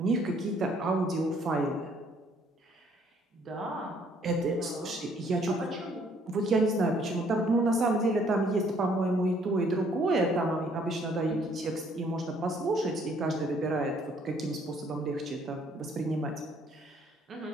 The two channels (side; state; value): both; normal; correlation 0.63